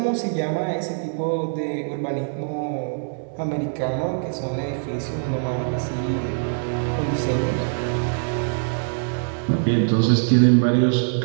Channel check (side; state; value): left; silent; 63 dB below the other